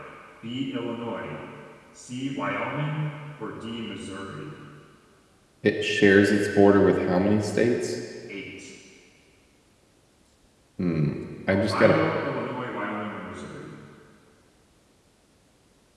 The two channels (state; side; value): identical; both; correlation 1.00